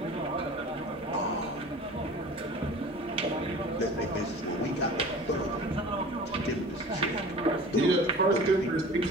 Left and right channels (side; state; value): both; normal; correlation 0.40